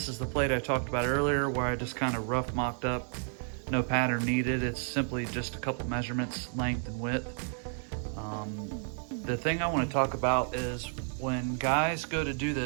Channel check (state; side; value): silent; left; 57 dB below the other